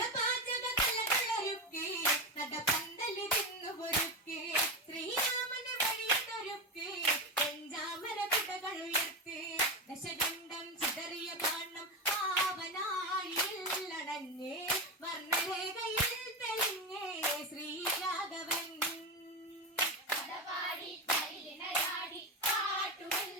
കലകളൊരുക്കെ നടപ്പന്തലിരുന്നു ഒരുക്കെ ശ്രീരാമന് വഴിയതൊരുക്കെ വെഞ്ചാമര കുടകൾ ഉയർത്ത് ദശകണ്ഠം ചിതറിയ ബാണം ആവനാഴിയിൽ അടഞ്ഞേ വർണ്ണരേഖയിൽ തെളിഞ്ഞേ ശ്രീരാഘവൻ കഥപാടി മയിലിണയാടി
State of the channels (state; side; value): normal; both; correlation 0.16